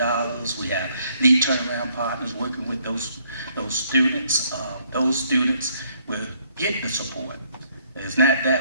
We have lead turnaround partners working with those students. Those students will get the support. It's not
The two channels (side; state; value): both; inverted; correlation -0.68